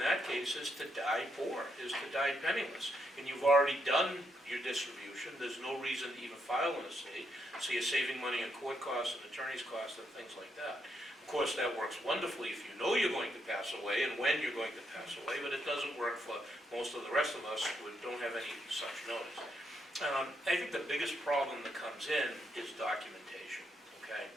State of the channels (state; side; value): normal; both; correlation 0.78